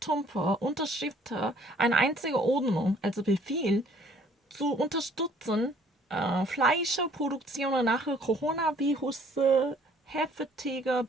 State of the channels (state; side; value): normal; both; correlation 0.58